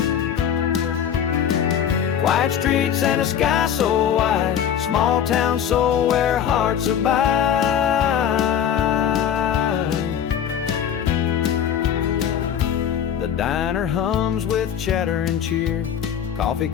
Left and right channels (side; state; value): right; quieter; 9.0 dB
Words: Quiet streets and a sky so wide, small town soul where hearts abide. The diner hums with chatter and cheer, coffee